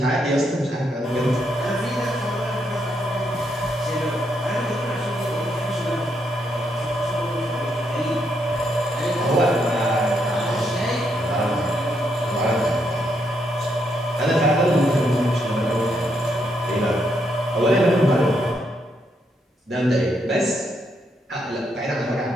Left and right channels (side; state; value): both; normal; correlation 0.77